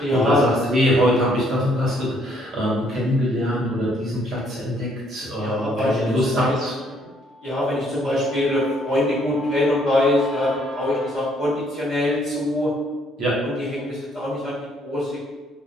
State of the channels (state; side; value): normal; both; correlation 0.67